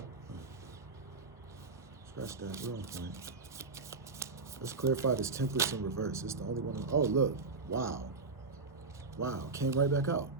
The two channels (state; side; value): quieter; left; 4.1 dB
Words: Scratch that wrong point. Let's clarify this Temperance in reverse. It's the only one. Oh, look. Wow. Wow. Came right back out.